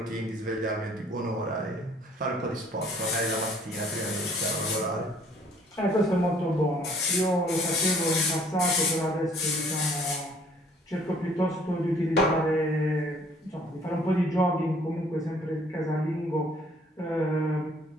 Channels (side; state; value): both; normal; correlation 0.58